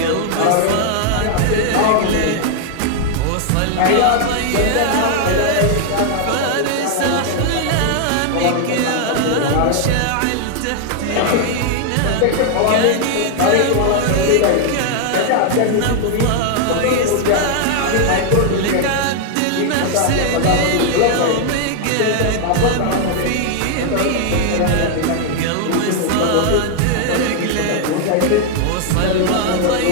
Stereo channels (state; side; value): different; both; correlation 0.00